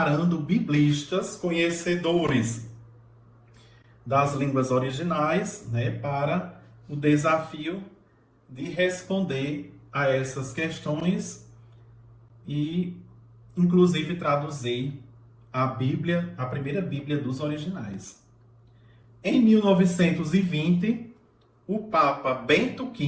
biblistas conhecedores das línguas originais, né, para o desafio de responder a essas questões e, inclusive, traduzir a Bíblia, a primeira Bíblia dos originais. Em 1920, o Papa Bento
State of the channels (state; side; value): identical; both; correlation 1.00